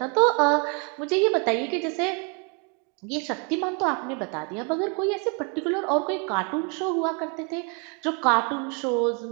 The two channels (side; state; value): left; quieter; 34.3 dB